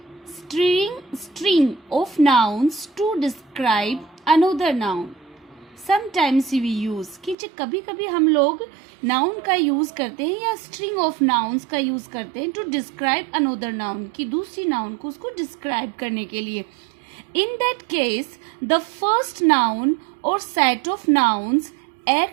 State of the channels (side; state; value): left; drops out; at 7.4 s